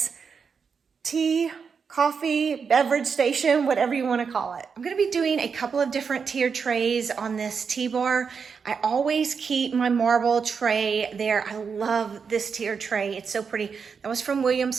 tea, coffee, beverage station, whatever you wanna call it. I'm gonna be doing a couple of different tier trays on this tea bar. I always keep my marble tray there. I love this tier tray. It's so pretty. That was from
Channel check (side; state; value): left; quieter; 5.9 dB